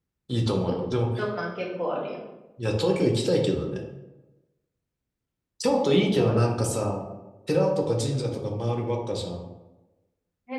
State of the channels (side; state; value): both; identical; correlation 1.00